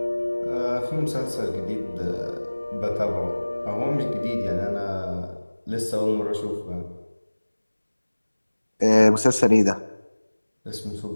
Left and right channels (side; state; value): both; inverted; correlation -1.00